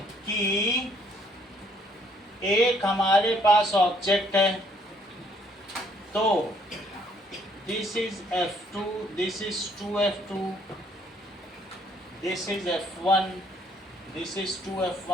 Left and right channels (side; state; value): both; normal; correlation 0.65